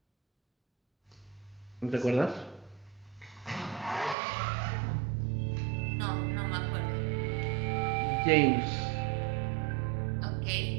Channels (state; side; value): drops out; left; at 4.2 s